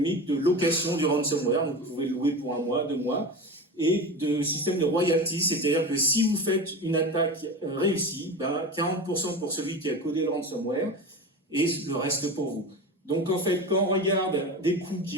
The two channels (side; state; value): both; normal; correlation 0.28